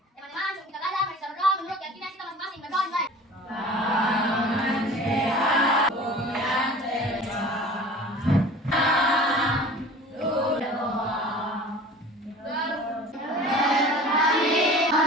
sebelum kita belajar, mari kita berdoa menurut keyakinan kita masing-masing. Berdoa dimulai. Tangan sehat, goyang terbang.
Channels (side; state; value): both; normal; correlation 0.42